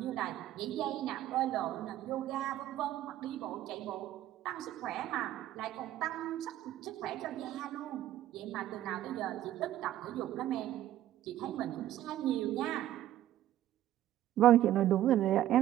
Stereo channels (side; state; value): left; quieter; 13.0 dB